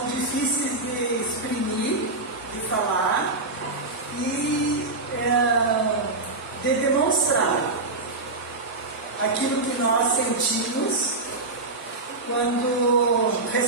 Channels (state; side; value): quieter; left; 3.2 dB